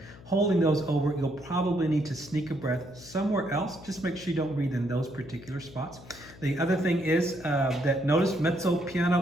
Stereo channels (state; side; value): noise; left; hum, 19 dB below the sound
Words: Holding those over, you'll probably need to sneak a breath somewhere else. Just make sure you don't breathe in those particular spots. The other thing is that notice mezzo